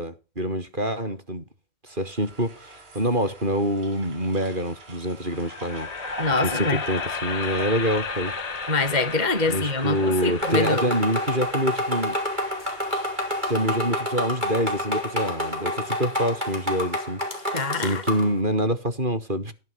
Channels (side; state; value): left; late; 2.3 ms